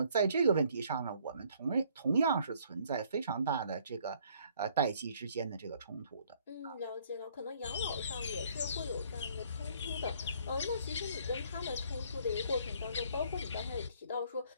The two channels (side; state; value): both; inverted; correlation -0.61